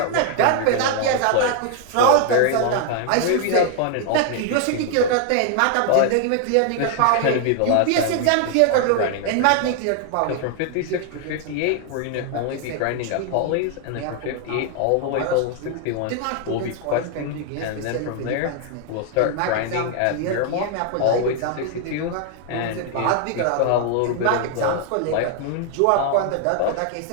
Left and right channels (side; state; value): both; different; correlation 0.00